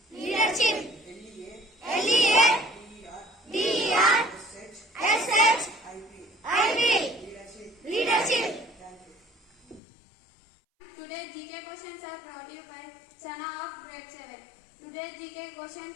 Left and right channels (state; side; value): drops out; right; at 9.8 s